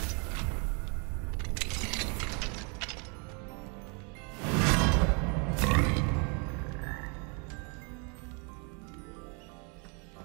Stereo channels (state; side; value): quieter; left; 35.3 dB